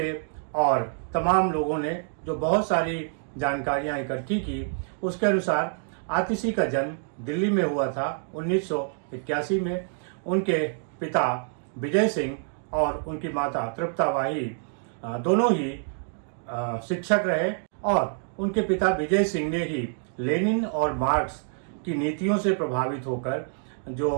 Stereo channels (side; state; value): left; silent; 60 dB below the other